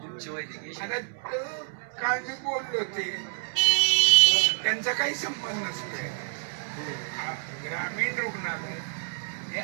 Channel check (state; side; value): silent; left; 59 dB below the other